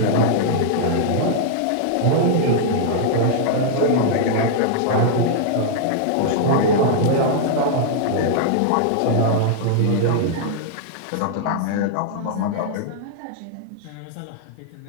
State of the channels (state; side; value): different; both; correlation -0.01